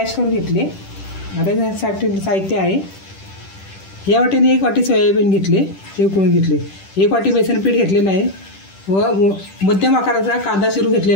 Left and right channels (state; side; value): late; right; 10 ms